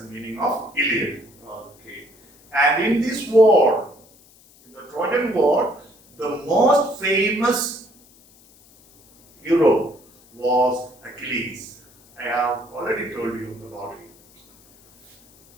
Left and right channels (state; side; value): noise; left; hiss, 28 dB below the sound